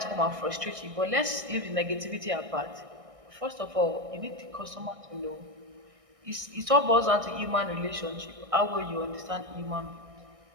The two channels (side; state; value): left; late; 1.6 ms